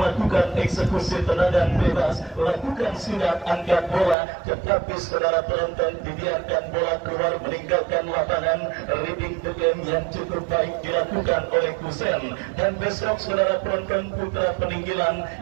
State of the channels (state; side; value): drops out; left; at 4.2 s